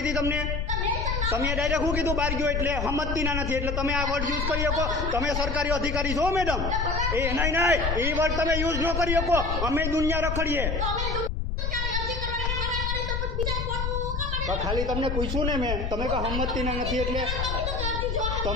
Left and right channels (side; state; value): left; noise; rumble, 1 dB below the sound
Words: હતી તમને. તમે ડાયરેક્ટ શું કીધું બહાર ગયો એટલે હમતતીના નથી એટલે તમે આ વર્ડ યુઝ કરી શકો. તમે સરકારી અધિકારી છો મેડમ. એ નહીં એ વર્ડ તમે યુઝ ન કરી શકો. અમે દુનિયા રખડીએ. ખાલી તમને પૂછ્યું ને મેં તમે કે હમતતીના નથી એટલે